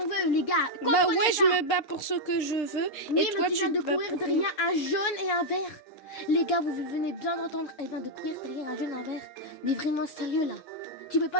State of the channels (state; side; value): late; right; 6.7 ms